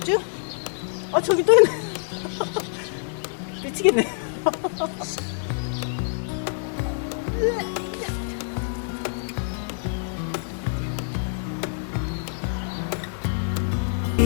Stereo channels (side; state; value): right; silent; 55 dB below the other